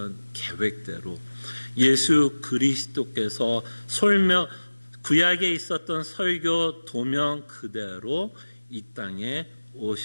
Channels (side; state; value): both; inverted; correlation -1.00